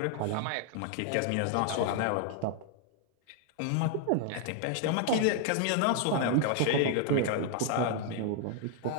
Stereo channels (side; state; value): both; different; correlation 0.00